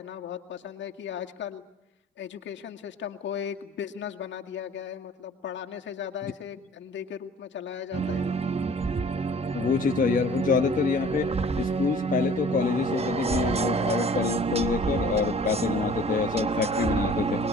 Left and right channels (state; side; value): normal; both; correlation 0.49